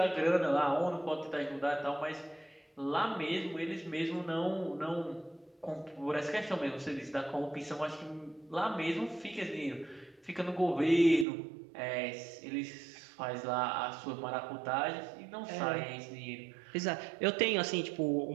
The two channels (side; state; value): left; drops out; at 11.2 s